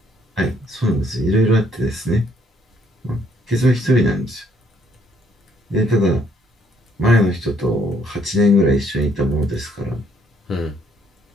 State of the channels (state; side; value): normal; both; correlation 0.67